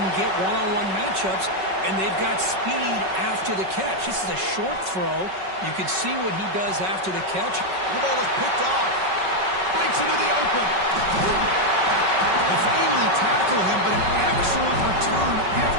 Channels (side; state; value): left; late; 5.3 ms